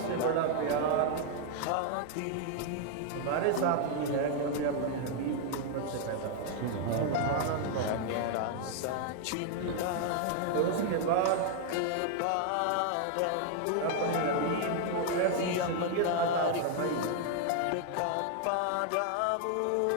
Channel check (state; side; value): different; both; correlation 0.00